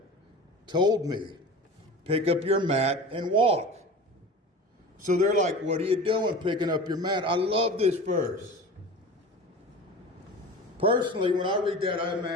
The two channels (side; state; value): both; normal; correlation 0.35